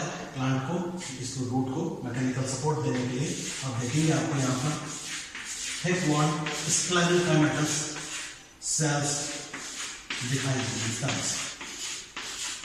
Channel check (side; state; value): both; identical; correlation 1.00